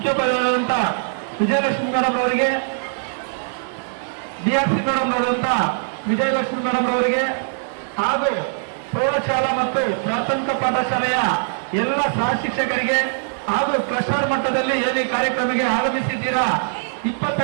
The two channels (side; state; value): left; silent; digital silence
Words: ವಿಜಯಲಕ್ಷ್ಮಿ ಮೇಡಮ್ ಅವರಿಗೆ, ಡಿಆರ್ಸಿ ಮೇಡಮ್ ಅವರಂತ ವಿಜಯಲಕ್ಷ್ಮಿ ಮೇಡಮ್ ಅವರಿಗೆ ಹಾಗೂ ಪ್ರೌಢಶಾಲಾ ಮತ್ತು ಪ್ರಾಥಮಿಕ ಪಾಠಶಾಲೆಯ ಎಲ್ಲ ಸಹ ಶಿಕ್ಷಕರಿಗೆ ಹಾಗೂ ಕ್ಲಸ್ಟರ್ ಮಟ್ಟದಲ್ಲಿ ಏನು ಕಾರ್ಯಕ್ರಮಕ್ಕೆ ಆಗಮಿಸಿದ್ದೀರಾ